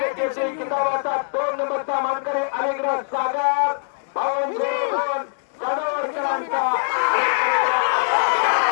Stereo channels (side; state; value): right; silent; digital silence